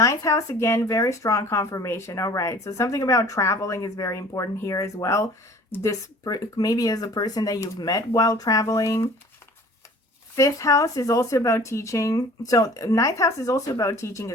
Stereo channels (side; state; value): both; normal; correlation 0.48